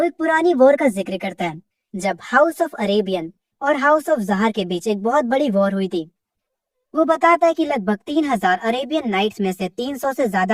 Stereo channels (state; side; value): identical; both; correlation 1.00